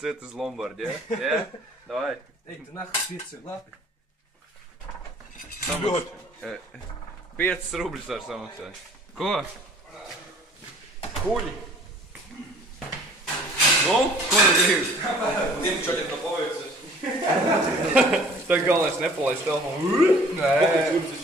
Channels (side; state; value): both; normal; correlation 0.52